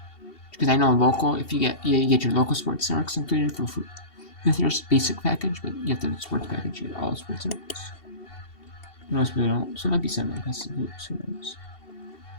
Because I know local, if you get your local sports networks included for food with your basic package, but you have the sports package, you get all the sports networks. Most people don't, so it might be simulcast on hoops, who knows.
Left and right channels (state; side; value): late; right; 2.7 ms